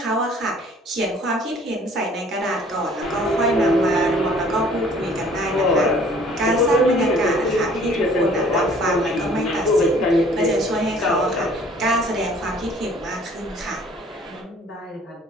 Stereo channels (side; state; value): both; normal; correlation 0.55